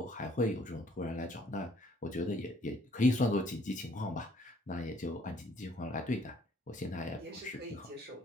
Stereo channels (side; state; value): both; normal; correlation 0.62